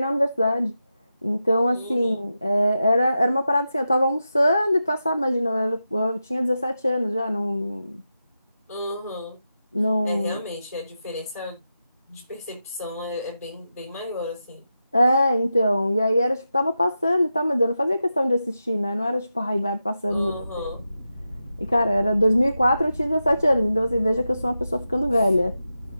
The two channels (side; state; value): both; inverted; correlation -0.89